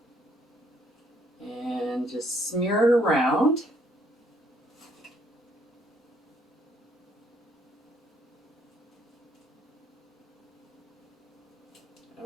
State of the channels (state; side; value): normal; both; correlation 0.67